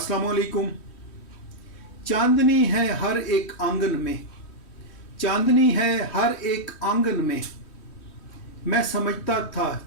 वालेकुम। चांदनी है हर एक आंगन में, चांदनी है हर एक आंगन में, मैं समझता था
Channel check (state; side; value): late; right; 3.1 ms